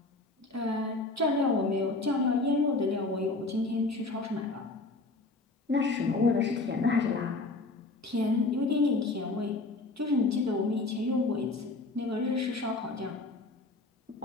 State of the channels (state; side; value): quieter; right; 3.3 dB